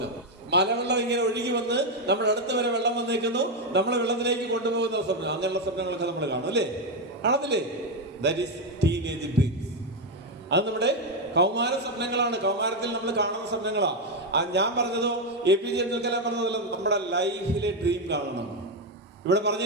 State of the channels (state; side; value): normal; both; correlation 0.05